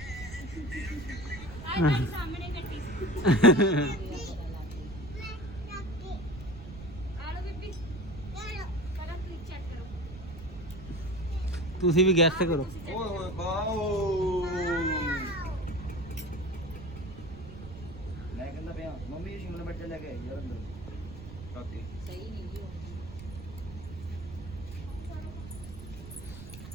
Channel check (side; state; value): right; noise; rumble, 13 dB below the sound